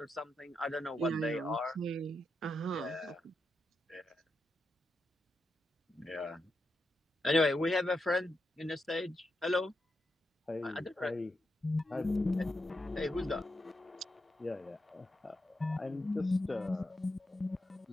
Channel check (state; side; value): normal; both; correlation 0.85